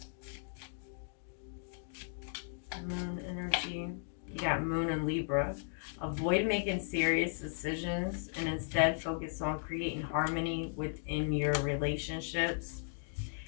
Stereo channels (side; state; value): right; silent; digital silence